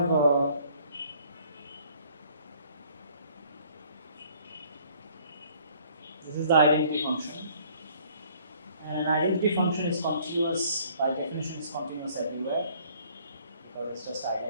this is the identity function, and an identity function is continuous by definition, is continuous everywhere, or it's just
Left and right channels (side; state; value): both; inverted; correlation -0.59